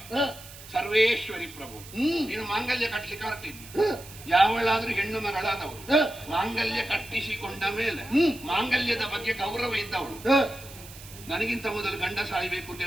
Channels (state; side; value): noise; right; hiss, 17 dB below the sound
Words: ಸರ್ವೇಶ್ವರಿ ಪ್ರಭು. ನೀನು ಮಾಂಗಲ್ಯ ಕಟ್ಟಲಿಕ್ಕೆ ಹೊರಟಿದ್ದ ಯಾವಳಾದ್ರೂ ಹೆಣ್ಣು ಮಗಳಾದವಳು ಮಾಂಗಲ್ಯ ಕಟ್ಟಿಸಿಕೊಂಡ ಮೇಲೆ ಮಾಂಗಲ್ಯದ ಬಗ್ಗೆ ಗೌರವ ಇದ್ದವಳು ನನಗಿಂತ ಮೊದಲು ಗಂಡ ಸಾಯಬೇಕು ಅಂತ